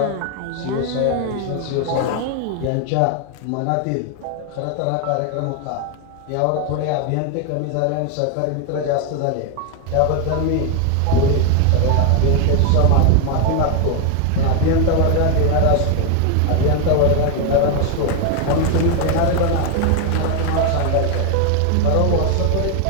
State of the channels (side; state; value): both; different; correlation 0.01